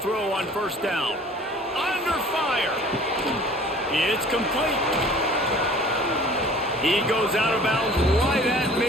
on 1st down. Under fire. It's complete. He goes out of bounds right at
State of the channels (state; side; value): normal; both; correlation 0.49